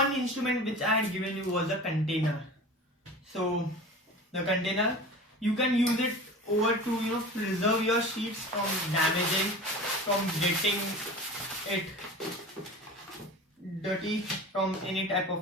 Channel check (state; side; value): normal; both; correlation 0.35